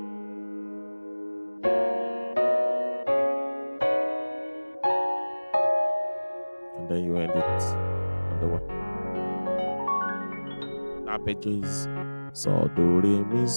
and then you end it on the 1. Arpeggio is so do re mi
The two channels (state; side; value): inverted; both; correlation -1.00